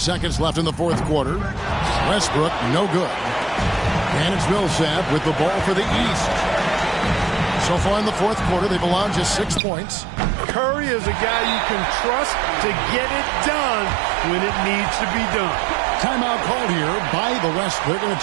left in the fourth quarter. Westbrook, no good. And it's Millsap with the ball for the East. So far in the fourth quarter, they've allowed just 6 points. Curry is a guy you can trust to get it done when it needs to be done. Timeout called here by the West. They're going to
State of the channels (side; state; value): left; drops out; at 9.6 s